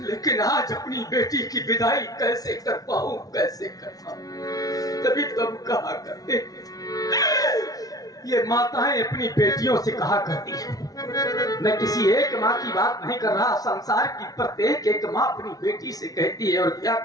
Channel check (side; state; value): right; late; 0.18 ms